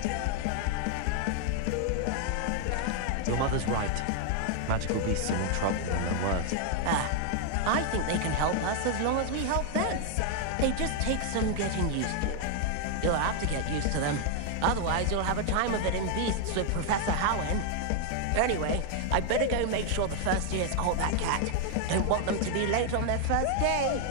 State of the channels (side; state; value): both; different; correlation 0.00